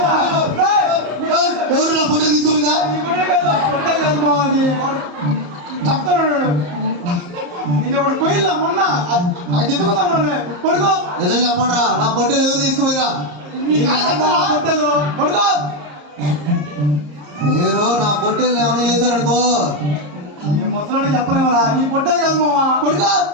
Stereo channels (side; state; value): left; late; 34 ms